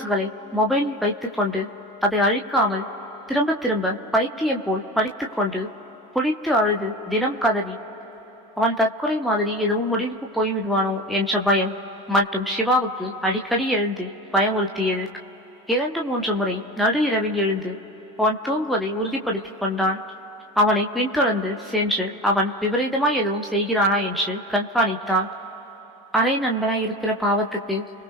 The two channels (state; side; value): normal; both; correlation 0.31